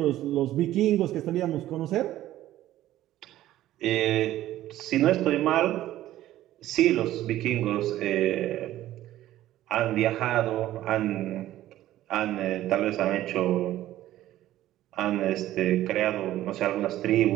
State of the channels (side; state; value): left; quieter; 14.0 dB